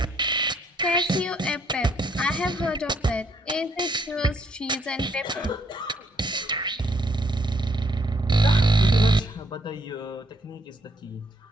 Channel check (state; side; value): normal; both; correlation 0.69